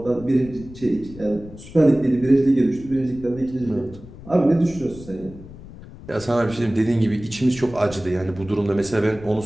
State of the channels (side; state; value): left; noise; rumble, 17 dB below the sound